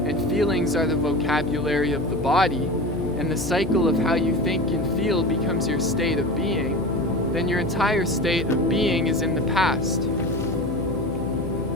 feelings are the vocabulary of the body, and the cycle of how you think and feel becomes your state of being, then your entire state of being is in the past.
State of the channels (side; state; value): left; noise; hum, 7 dB below the sound